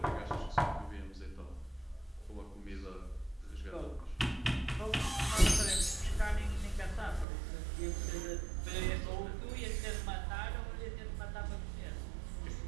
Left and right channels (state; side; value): drops out; left; at 7.2 s